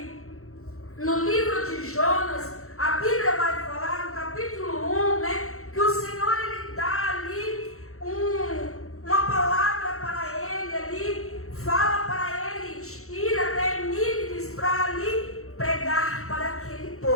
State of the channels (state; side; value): late; right; 0.63 ms